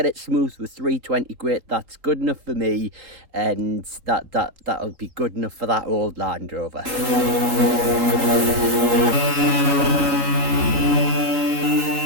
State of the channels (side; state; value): left; late; 4.1 ms